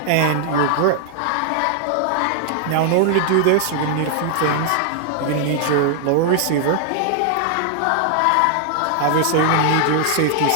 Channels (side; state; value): both; different; correlation 0.00